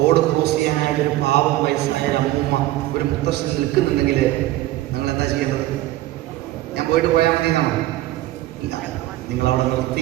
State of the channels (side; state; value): left; quieter; 15.8 dB